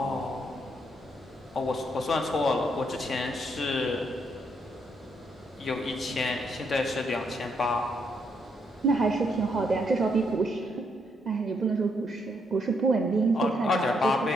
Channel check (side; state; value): both; normal; correlation 0.75